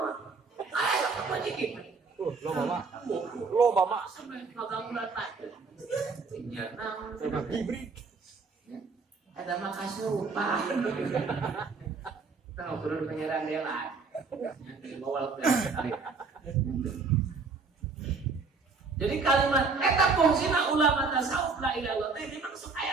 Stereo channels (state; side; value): quieter; left; 4.6 dB